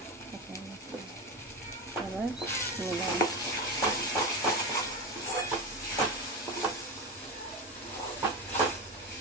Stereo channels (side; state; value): both; normal; correlation 0.20